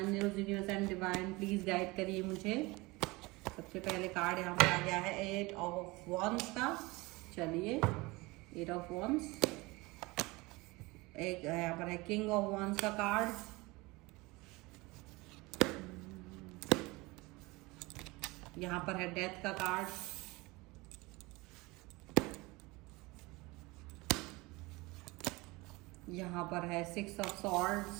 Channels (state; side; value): quieter; left; 23.1 dB